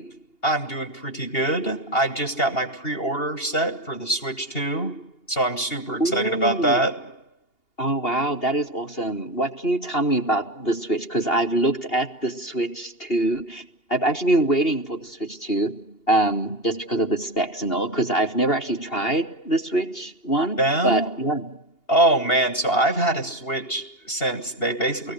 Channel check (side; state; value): right; late; 2.8 ms